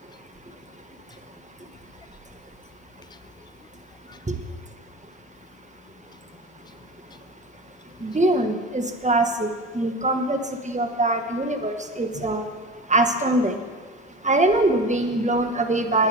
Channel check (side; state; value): both; normal; correlation 0.33